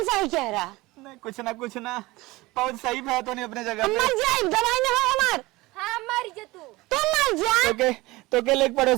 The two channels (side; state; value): left; quieter; 20.8 dB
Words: सही कह रहा। नहीं कुछ ना बहुत सही है तो नहीं अपने जगह हम पे। मर जाए, दवाई ना हो हमार। हां मर जा तू मर जा। तो के एक